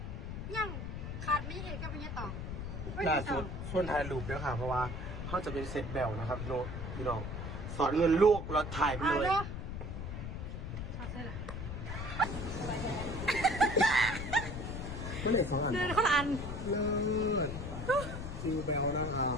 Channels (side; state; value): left; noise; rumble, 6 dB below the sound